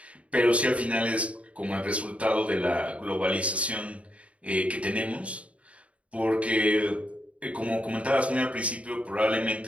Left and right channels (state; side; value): late; left; 0.064 ms